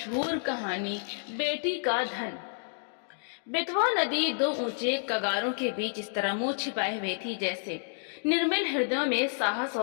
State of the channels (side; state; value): right; silent; digital silence